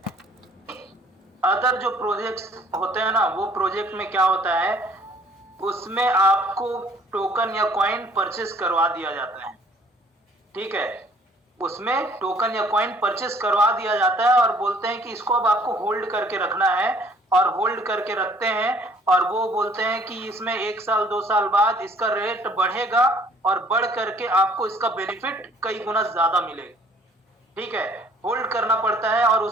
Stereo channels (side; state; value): both; normal; correlation 0.58